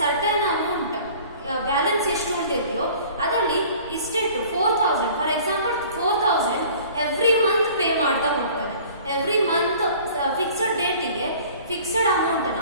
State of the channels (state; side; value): inverted; both; correlation -0.48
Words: ಸರ್ಟೈನ್ ಅಮೌಂಟ್ ಬ್ಯಾಲೆನ್ಸ್ ಎಷ್ಟು ಉಳಿದಿದೆಯೋ ಅದರಲ್ಲಿ ಫಿಕ್ಸ್ಡ್ ಅಮೌಂಟ್ ಅನ್ನ